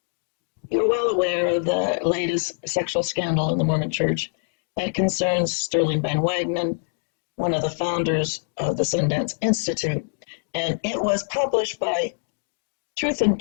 you're well aware of the latest sexual scandal in the Mormon Church that concerns Sterling Van Wagenen, one of the founders of the Sundance Institute. And it was published by Truth and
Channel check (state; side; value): silent; right; digital silence